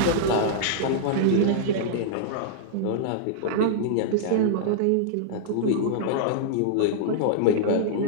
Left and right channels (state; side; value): different; both; correlation -0.02